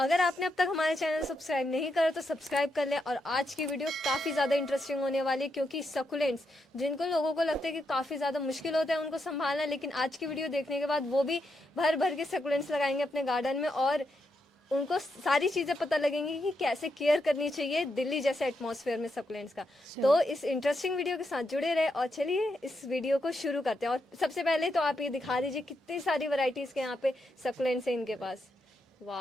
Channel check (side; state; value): both; normal; correlation 0.82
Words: आपने अब तक हमारे चैनल सब्सक्राइब नहीं करा तो सब्सक्राइब कर लें। और आज की वीडियो काफ़ी ज़्यादा इंटरेस्टिंग होने वाली है, क्योंकि सकुलेंट्स जिनको लोगों को लगता है कि काफ़ी ज़्यादा मुश्किल होता है उनको संभालना, लेकिन आज की वीडियो देखने के बाद वो भी भर भर के सकुलेंट्स लगाएंगे अपने गार्डन में और उनको सारी चीज़ें पता लगेंगी कि कैसे केयर करनी चाहिए दिल्ली जैसे एटमॉस्फेयर में सकुलेंट्स का। तो इस इंटरेस्टिंग वीडियो के साथ जुड़े रहे और चलिए इस वीडियो को शुरू करते हैं। और सबसे पहले तो आप ये दिखा दीजिए कितनी सारी वैरायटीज़ के यहाँ पे सकुलेंट्स हैं इनके पास।